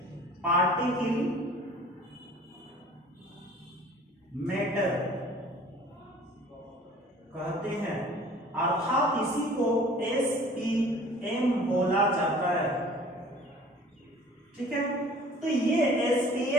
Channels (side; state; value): both; normal; correlation 0.48